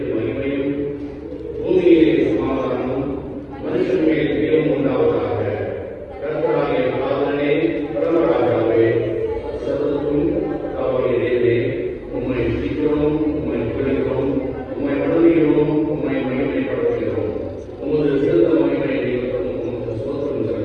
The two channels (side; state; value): both; identical; correlation 1.00